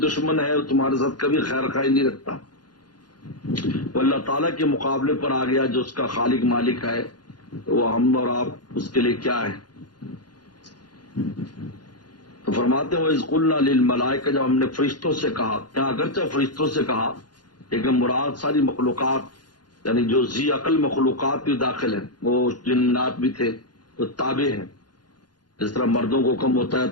ہے، وہ تمہارے ساتھ کبھی خیر خواہی نہیں رکھتا، وہ اللہ تعالیٰ کے مقابلے پر آ گیا جو اس کا خالق مالک ہے، تو وہ ہم اور آپ اس کے لیے کیا ہے؟ تو فرماتے ہیں وَإِذْ قُلْنَا لِلْمَلَائِكَةِ، جب ہم نے فرشتوں سے کہا، کیا اگرچہ فرشتوں سے کہا لیکن مراد ساری مخلوقات یعنی جو ذی عقل مخلوقات بھی داخل ہیں، وہ جنات بھی تھے، وہ تابع ہیں۔ جس طرح مردوں کو حکم ہوتا ہے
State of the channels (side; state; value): right; late; 0.70 ms